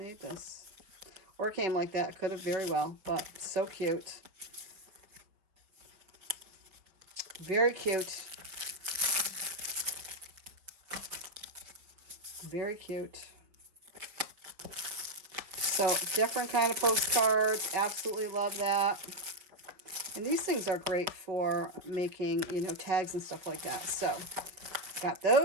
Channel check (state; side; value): late; left; 5.4 ms